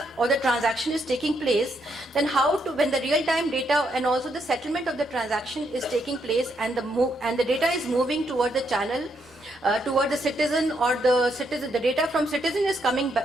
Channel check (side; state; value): both; normal; correlation 0.77